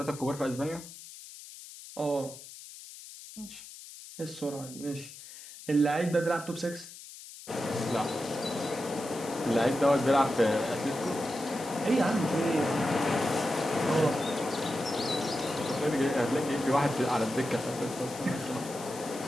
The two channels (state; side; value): noise; left; hiss, 15 dB below the sound